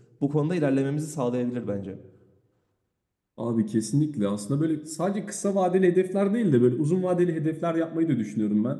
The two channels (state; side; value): identical; both; correlation 1.00